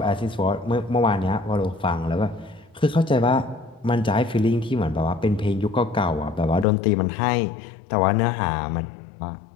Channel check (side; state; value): right; drops out; at 6.7 s